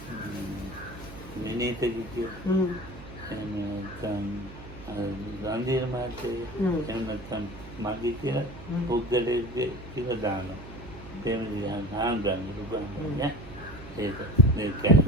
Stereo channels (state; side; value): noise; right; hum, 15 dB below the sound